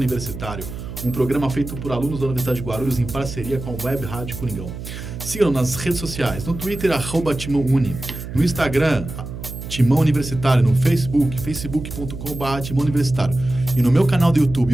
Um programa feito por alunos da Universidade de Guarulhos em parceria com a Web Rádio Coringão. Sigam nas redes sociais, no Twitter, @TimãoUni, no Instagram, Timão Universitário, no Facebook, facebook.com/Timão Universitário. E no meu canal do YouTube,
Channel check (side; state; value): right; noise; hum, 9 dB below the sound